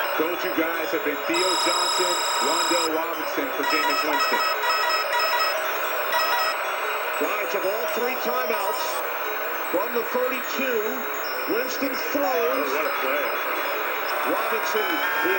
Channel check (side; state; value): both; identical; correlation 1.00